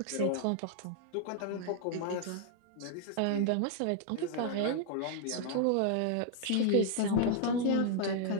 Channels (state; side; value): different; both; correlation -0.01